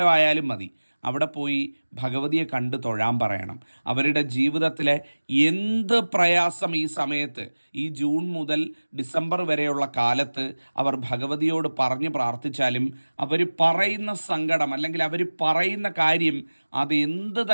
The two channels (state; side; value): inverted; both; correlation -1.00